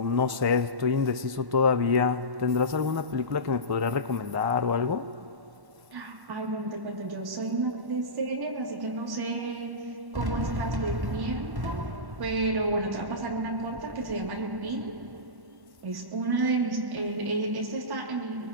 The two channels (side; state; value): left; late; 1.1 ms